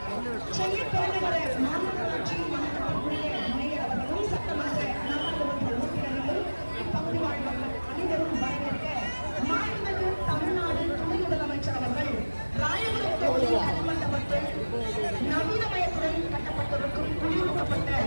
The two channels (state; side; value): inverted; both; correlation -1.00